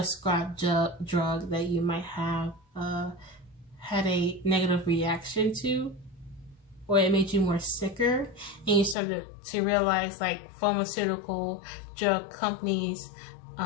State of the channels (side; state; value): right; drops out; at 9.0 s